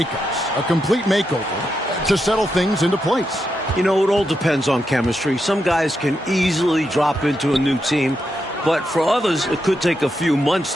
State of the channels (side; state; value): both; normal; correlation 0.84